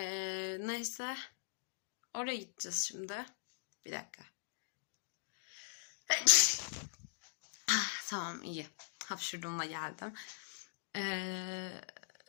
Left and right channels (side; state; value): right; silent; digital silence